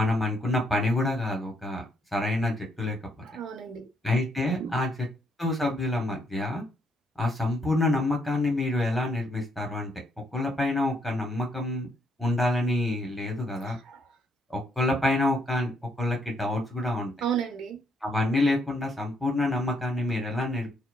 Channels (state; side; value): normal; both; correlation 0.73